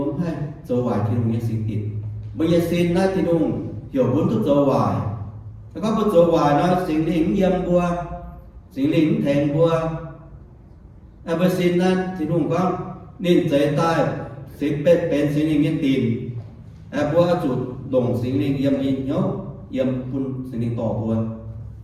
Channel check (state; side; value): identical; both; correlation 1.00